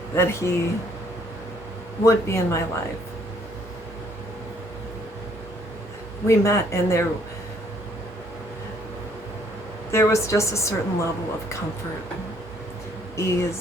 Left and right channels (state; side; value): normal; both; correlation 0.64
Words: that he would be in my life. We met, and there was just a certain level of comfort,